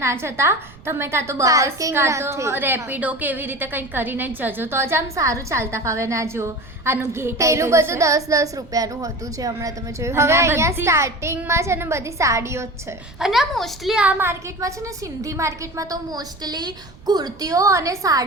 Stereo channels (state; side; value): noise; right; rumble, 23 dB below the sound